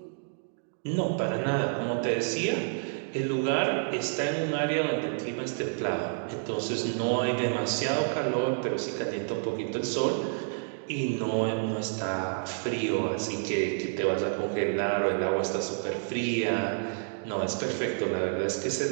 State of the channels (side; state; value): left; silent; digital silence